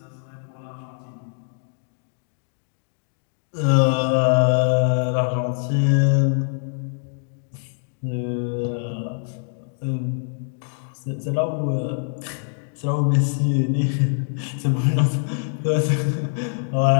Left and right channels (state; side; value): silent; right; digital silence